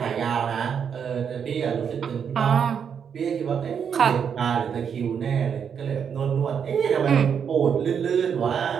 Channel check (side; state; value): left; quieter; 7.3 dB